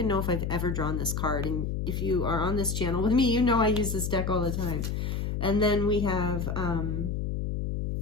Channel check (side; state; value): left; noise; hum, 2 dB below the sound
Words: know if I've ever drawn this card. And if you are on this channel with me, you know I use this deck all the time. And then we have